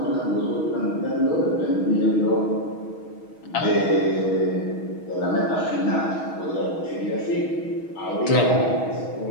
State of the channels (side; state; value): right; late; 6.3 ms